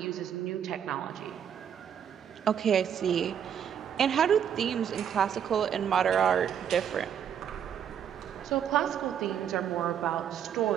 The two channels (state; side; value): quieter; left; 8.6 dB